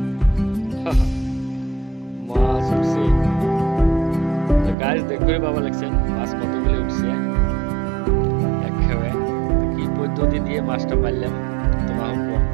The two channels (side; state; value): left; drops out; at 4.8 s